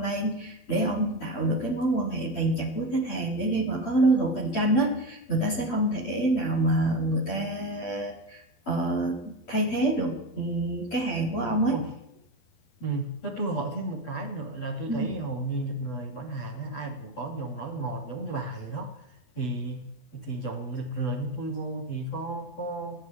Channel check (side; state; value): right; late; 12 ms